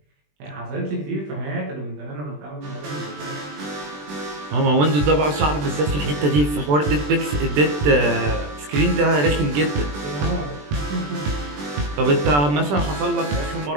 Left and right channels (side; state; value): left; late; 20 ms